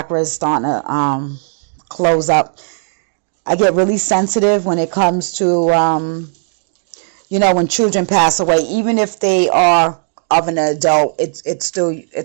is starting to close up. I get really sensitive when it comes to, when children pass away. Even if they are of an adult, it's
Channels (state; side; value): silent; left; digital silence